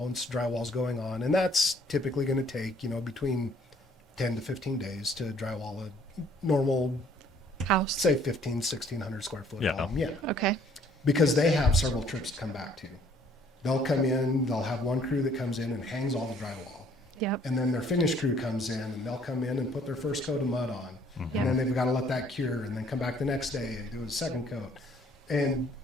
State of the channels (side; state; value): both; normal; correlation 0.61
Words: drywall's going on, and that's typically going to take, between 10 to 15 days to drywall a normal House. say 1,600 square foot home. Yeah. Okay. Because they have several trips to come back to. They'll come in, they'll have one crew that comes in and hangs all the drywall. Yep. And then their finish crew comes in and they'll come in and put their first coat of mud on. And then they've got to let that cure and then come back the next day and do a second coat. And